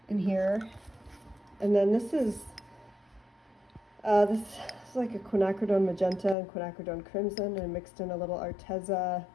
in here. And then this is like a quinacridone magenta and quinacridone crimson, and mixed in a little Arteza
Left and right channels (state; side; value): drops out; right; at 6.4 s